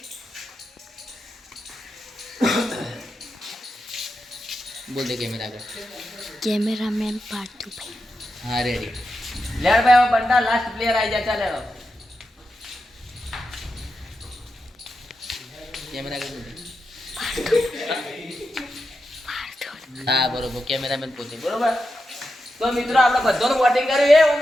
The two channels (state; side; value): normal; both; correlation 0.88